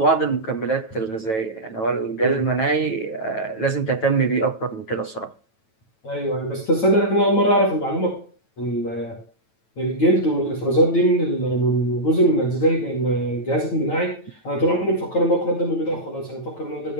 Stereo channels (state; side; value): late; right; 9.1 ms